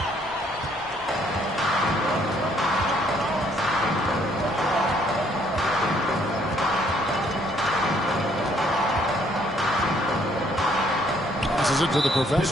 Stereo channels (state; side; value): normal; both; correlation 0.66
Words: Passes it to the